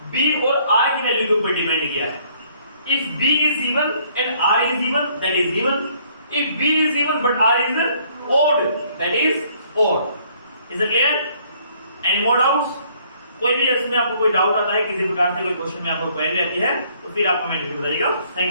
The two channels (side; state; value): both; inverted; correlation -0.63